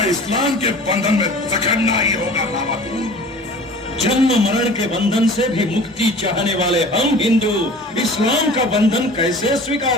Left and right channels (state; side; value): normal; both; correlation 0.43